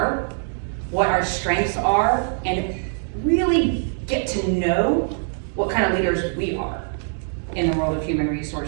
what our strengths are, and really get to know what kind of leaders we are in the world of human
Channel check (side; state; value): left; silent; digital silence